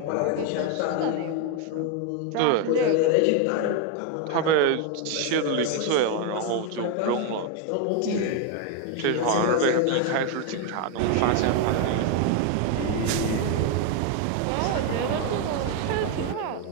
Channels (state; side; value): different; both; correlation 0.01